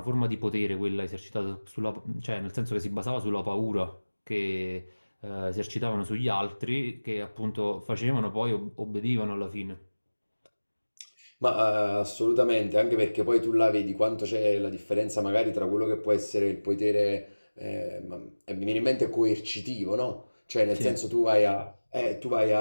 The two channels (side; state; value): both; inverted; correlation -1.00